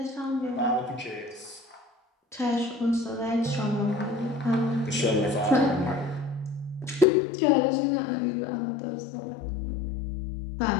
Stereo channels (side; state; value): right; drops out; at 7.1 s